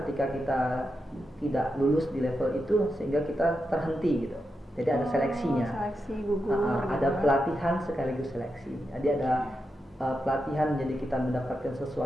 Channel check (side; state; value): both; normal; correlation 0.87